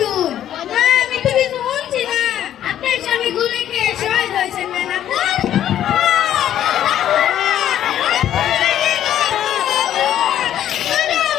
আমি তো কিছু বলছি না আপনার স্বামী গুলি খেয়ে শহীদ হয়েছেন না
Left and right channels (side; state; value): right; quieter; 11.2 dB